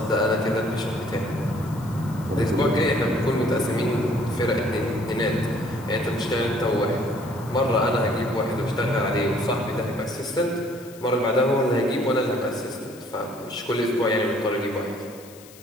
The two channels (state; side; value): noise; left; hiss, 21 dB below the sound